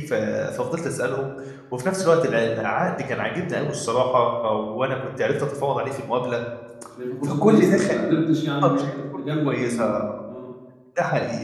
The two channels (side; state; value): both; identical; correlation 1.00